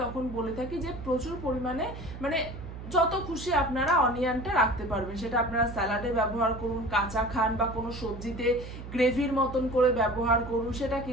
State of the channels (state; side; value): noise; right; hum, 11 dB below the sound